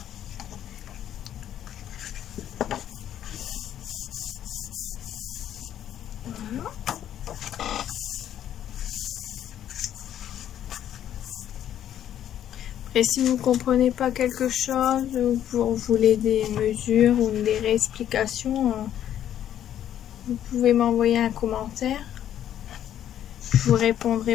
Et si vous ne comprenez pas quelque chose, ou vous voulez des mesures ou des réexplications, vous pouvez m'envoyer un commentaire. Je vous répondrai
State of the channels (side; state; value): right; quieter; 10.7 dB